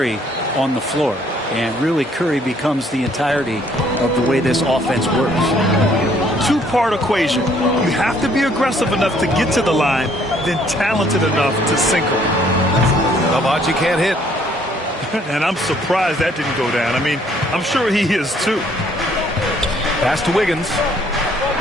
on the floor. And really, Curry becomes the entirety of the way this offense works. Two-part equation. You have to be aggressive enough to get to the line, then talented enough to sink them. Navaji can't hit. And I'm surprised that didn't go down. I mean, I'm sure he is too. Pass to Wiggins.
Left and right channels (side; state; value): both; normal; correlation 0.63